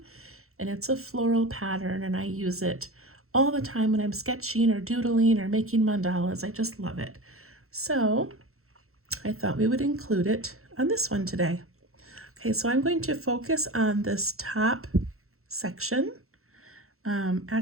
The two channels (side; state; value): left; late; 0.63 ms